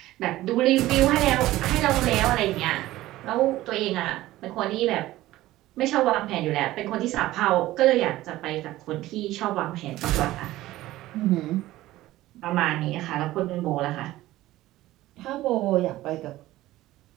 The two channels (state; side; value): quieter; left; 16.2 dB